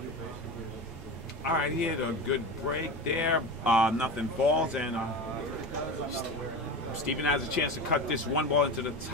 All right, he had a good break there. Nothing falls, and Steven has a chance to cut this one ball into the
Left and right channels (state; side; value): normal; both; correlation 0.26